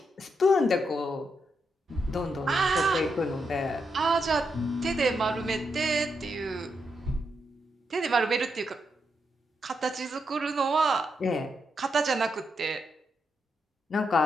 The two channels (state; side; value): normal; both; correlation 0.82